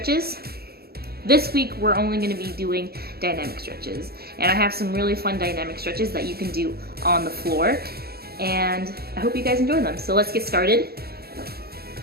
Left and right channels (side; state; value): left; late; 0.45 ms